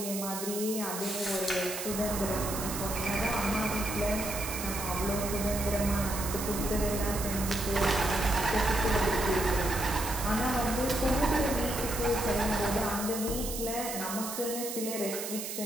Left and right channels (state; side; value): noise; right; hiss, 6 dB below the sound